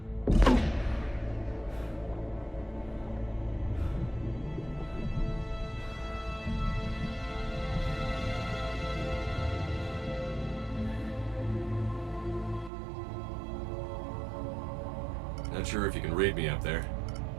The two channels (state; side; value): drops out; left; at 12.7 s